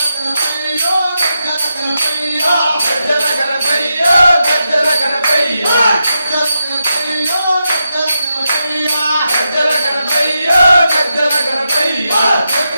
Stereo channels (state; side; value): inverted; both; correlation -0.86